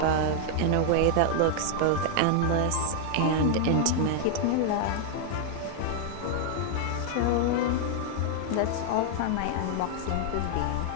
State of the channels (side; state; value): both; different; correlation 0.00